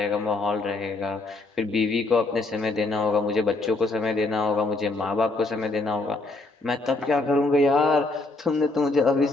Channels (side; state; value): right; quieter; 3.2 dB